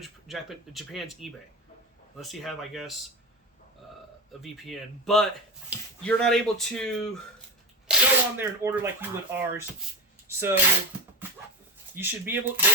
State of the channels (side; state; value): both; normal; correlation 0.10